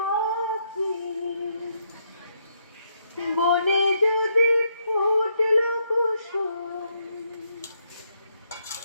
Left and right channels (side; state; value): both; inverted; correlation -0.76